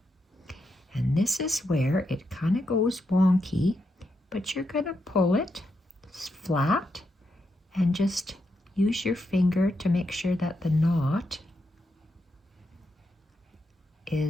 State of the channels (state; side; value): normal; both; correlation 0.83